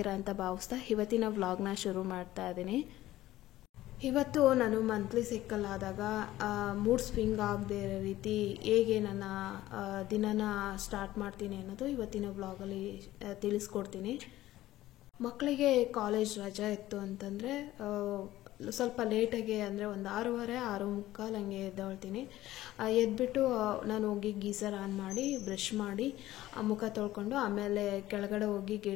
ಅಂತ ಭಾವಿಸ್ತಾ ಇವತ್ತಿನ ವ್ಲಾಗ್ನ ಶುರು ಮಾಡ್ತಾ ಇದ್ದೀನಿ. ಇವತ್ತು ನಾನು ಮಂತ್ಲಿ ಸೈಕಲ್ ಆದಾಗ ಮೂಡ್ ಸ್ವಿಂಗ್ ಆಗದೆ ಇರೋ ರೀತಿ ಹೇಗೆ ನನ್ನ ದಿನನ ಸ್ಟಾರ್ಟ್ ಮಾಡ್ತೀನಿ ಅನ್ನೋದು ಇವತ್ತಿನ ವ್ಲಾಗಲ್ಲಿ ತಿಳಿಸ್ಕೊಡ್ತೀನಿ. ಮಕ್ಕಳಿಗೆ ಕಾಲೇಜ್ ರಜೆ ಇತ್ತು ಅಂತಂದರೆ ಸ್ವಲ್ಪ ಲೇಟಾಗಿ ಅಂದರೆ ಒಂದು 6:30, 6:45 ಹಂಗೆ ಎದ್ದೇಳ್ತೀನಿ. ಎದ್ಬಿಟ್ಟು ನಾನು ಹೋಗಿ ಗೀಸರ್ ಆನ್ ಮಾಡಿ ಬ್ರಷ್ ಮಾಡಿ ಮುಖ ತೊಳ್ಕೊಂಡು ಆಮೇಲೆ ಕೆಳಗಡೆ ಹೋಗಿ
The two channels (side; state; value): right; quieter; 15.3 dB